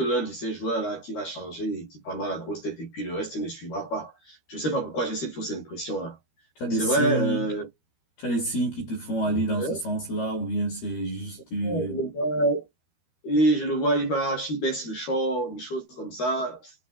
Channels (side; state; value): right; late; 13 ms